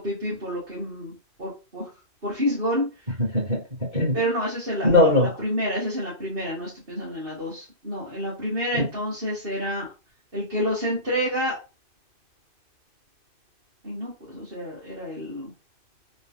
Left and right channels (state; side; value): late; left; 2.5 ms